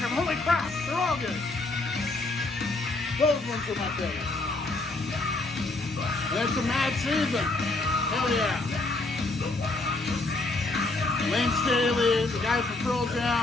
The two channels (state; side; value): quieter; right; 3.1 dB